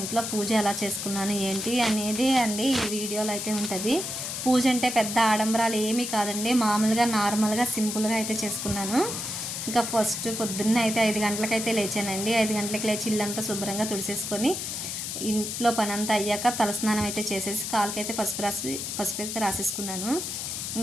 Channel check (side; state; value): left; noise; hiss, 4 dB below the sound